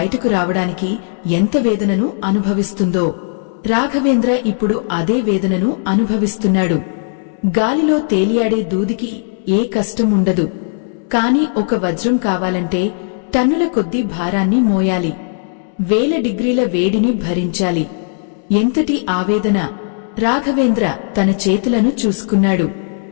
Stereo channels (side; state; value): right; silent; digital silence